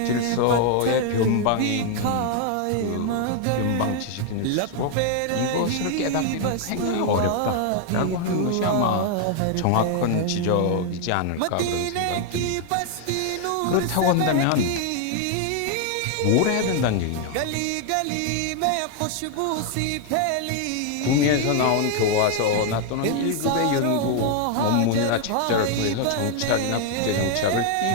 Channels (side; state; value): both; different; correlation 0.00